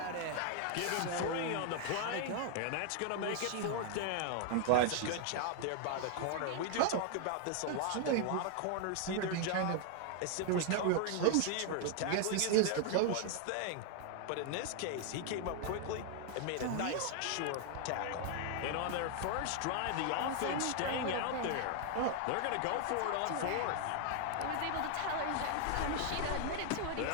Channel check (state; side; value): different; both; correlation 0.00